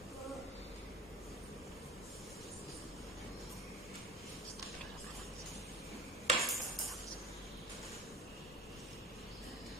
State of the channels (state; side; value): normal; both; correlation 0.33